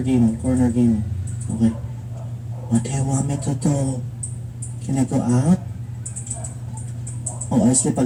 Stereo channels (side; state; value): both; identical; correlation 1.00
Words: game. Corner game. Okay. What do you want me to do? Can I go out? Oh, I sleep